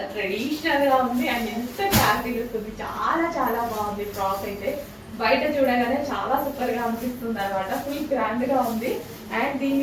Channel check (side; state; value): both; identical; correlation 1.00